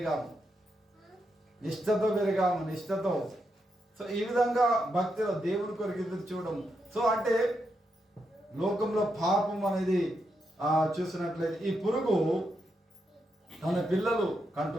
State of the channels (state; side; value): normal; both; correlation 0.83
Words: నిష్టతో. ఈ విధంగా భక్తిలో దేవుని కొరకు ఎదురు చూడడం. అంటే లోకంలో పాపం అనేది చూసినట్లయితే ఈ పురుగు తన పిల్లలు